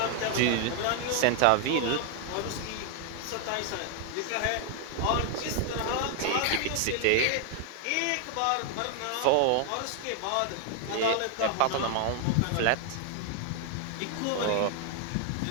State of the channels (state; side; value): different; both; correlation 0.00